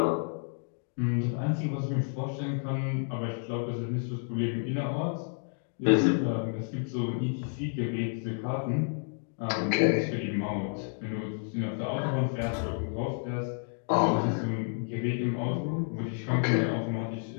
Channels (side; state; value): right; silent; 57 dB below the other